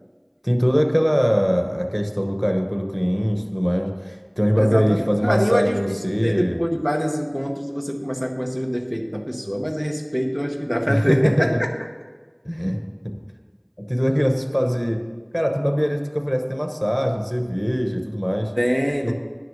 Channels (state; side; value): identical; both; correlation 1.00